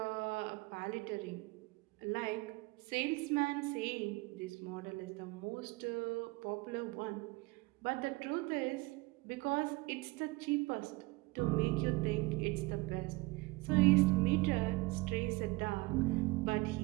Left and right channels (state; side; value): quieter; left; 23.0 dB